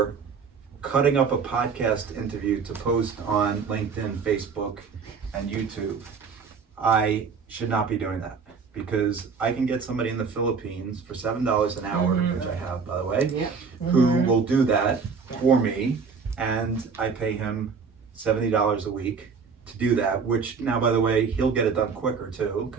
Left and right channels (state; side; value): quieter; left; 5.5 dB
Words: cutting up a podcast interview to post on LinkedIn, Facebook, and YouTube, I should not be doing that, because I can get somebody in the Philippines for $7 an hour, which I have, by the way, Yep. who will do that for me, and I pay him $70 a week to do that, which now, by the way, he'll get it done quicker too,